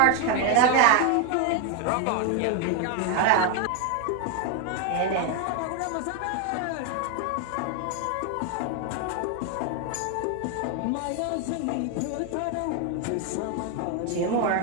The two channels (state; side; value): different; both; correlation 0.01